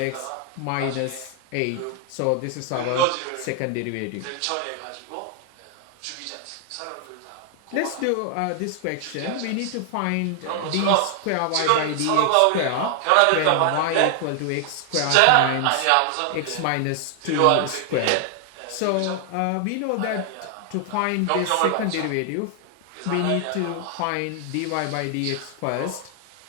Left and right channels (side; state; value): both; different; correlation 0.00